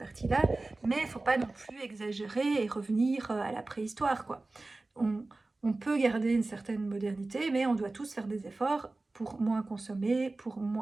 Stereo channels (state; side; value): quieter; left; 3.2 dB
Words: mais il faut pas non plus exagérer et revenir, à la préhistoire, quoi. On on peut garder une certaine modernité, mais on doit tous faire des efforts pour moins consommer, pour